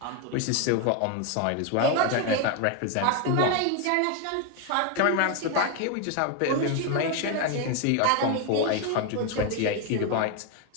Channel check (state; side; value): different; both; correlation 0.01